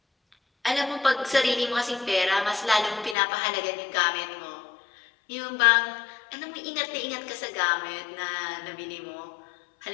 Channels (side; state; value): right; drops out; at 3.2 s